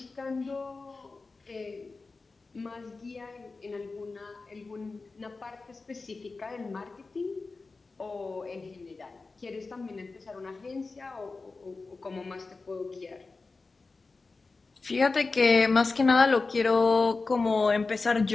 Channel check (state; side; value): quieter; right; 3.9 dB